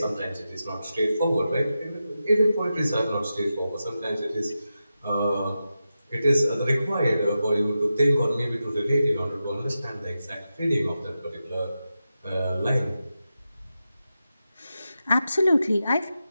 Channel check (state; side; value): inverted; both; correlation -0.90